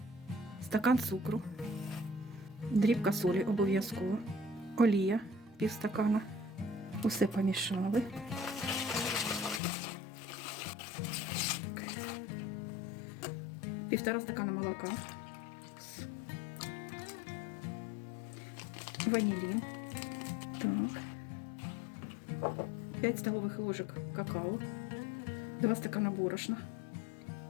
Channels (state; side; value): drops out; right; at 9.6 s